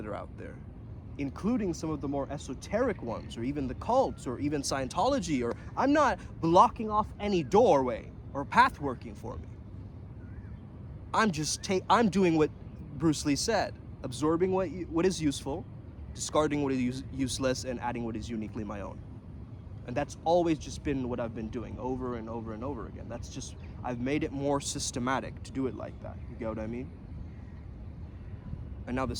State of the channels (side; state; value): both; identical; correlation 1.00